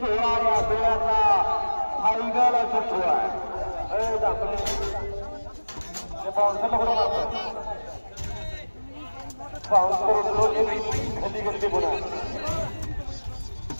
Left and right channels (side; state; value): both; inverted; correlation -1.00